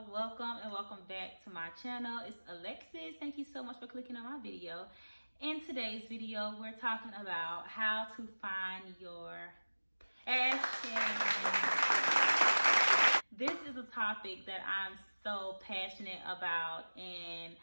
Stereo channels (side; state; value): both; inverted; correlation -1.00